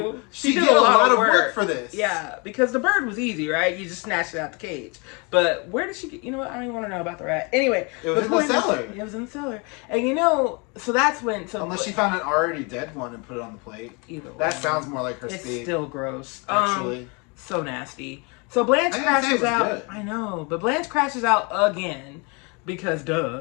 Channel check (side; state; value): right; quieter; 31.0 dB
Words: she did a lot of work for this. Yeah, because the bird was easy, right? You just snatched it out the cage. But where did she get, I don't even want to know about the rat. Anyway. It was in the cellar. It was in the cellar. And so that's when. Unless she found an already dead one and put it on the plate. Either way. That sounds more like her speed. It's still gross. Actually. So nasty. So Blanche crashes out. Good. I know. But Blanche crashes out again. Because